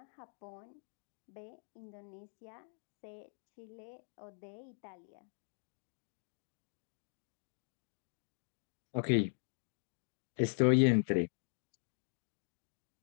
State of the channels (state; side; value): silent; right; 50 dB below the other